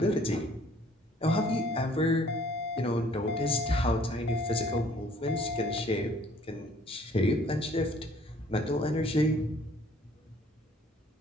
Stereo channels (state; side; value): normal; both; correlation 0.58